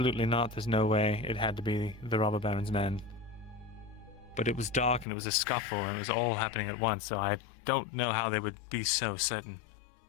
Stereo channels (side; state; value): right; drops out; at 5.1 s